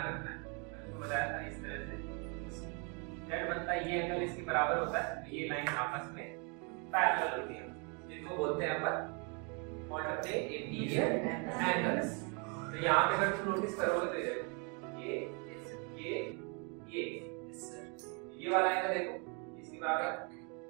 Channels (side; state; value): left; quieter; 35.0 dB